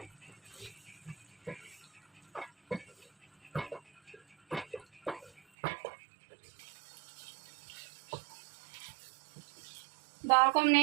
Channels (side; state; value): left; drops out; at 5.4 s